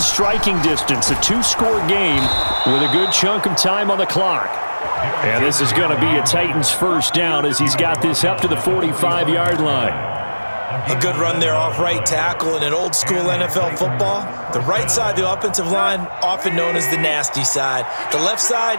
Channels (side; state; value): both; inverted; correlation -1.00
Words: distance. A 2-score game with a good chunk of time on the clock. And this is going to be a Titans first down as he's got this up to the 45-yard line. A good run there off right tackle in an old school NFL football. The right side of the offensive line, often known as the nasty side. The left side,